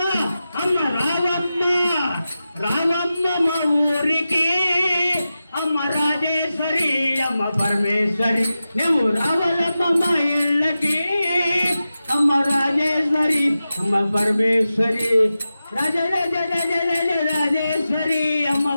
అమ్మ రావమ్మ రావమ్మ మా ఊరికి అమ్మ రాజేశ్వరి అమ్మ పరమేశ్వరి నువ్వు రావాలమ్మ మా ఇళ్ళకి అమ్మ రాజేశ్వరి అమ్మ పరమేశ్వరి రాజ రాజ రాజ రాజ రాజేశ్వరి అమ్మ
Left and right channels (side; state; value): both; inverted; correlation -0.93